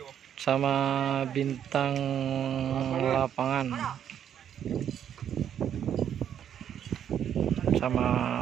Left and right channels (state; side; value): quieter; left; 9.3 dB